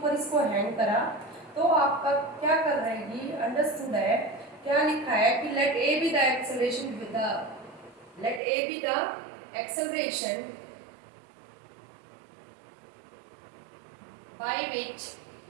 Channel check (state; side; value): drops out; left; at 8.4 s